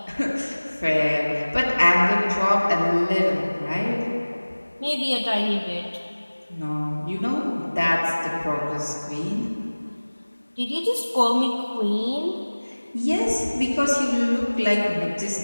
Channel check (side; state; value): both; inverted; correlation -1.00